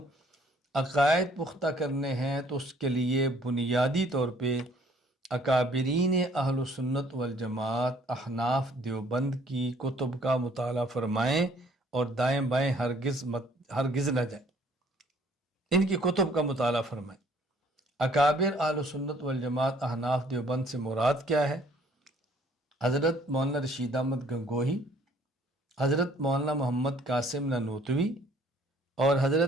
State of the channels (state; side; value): normal; both; correlation 0.59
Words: عقائد پختہ کرنے ہیں تو اس کے لیے بنیادی طور پہ اکابرین اہل سنت والجماعت احناف دیوبند کی کتب کا مطالعہ فرمائیں اور دائیں بائیں ہرگز نہ جائیں، ان کی کتب کا مطالعہ فرمائیں۔ اکابر اہل سنت والجماعت احناف دیوبند سے مراد کیا ہے؟ حضرت مولانا رشید احمد گنگوہی، حضرت مولانا محمد قاسم نانوتوی اور